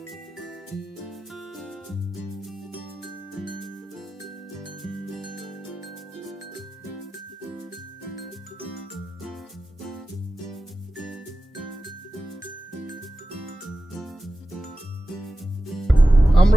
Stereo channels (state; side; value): normal; both; correlation 0.94